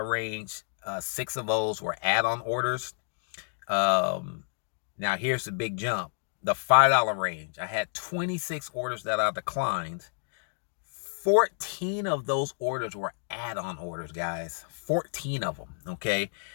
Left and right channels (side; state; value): right; silent; digital silence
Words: range. 6 of those were add-on orders. Now here's the big jump. The $5 range, I had 26 orders that I declined. 14 of those orders were add-on orders, guys. 14 of them, okay?